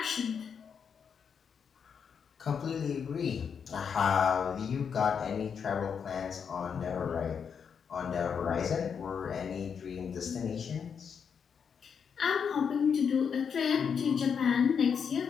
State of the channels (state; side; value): quieter; right; 6.8 dB